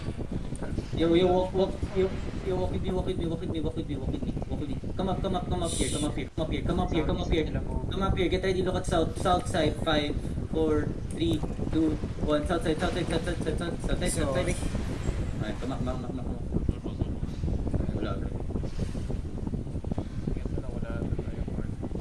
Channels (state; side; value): identical; both; correlation 1.00